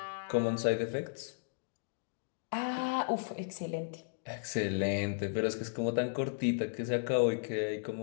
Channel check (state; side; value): silent; right; digital silence